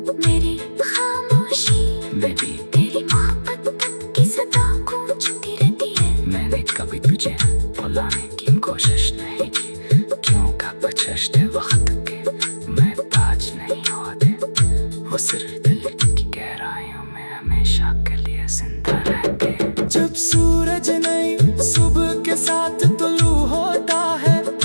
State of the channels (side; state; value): both; inverted; correlation -1.00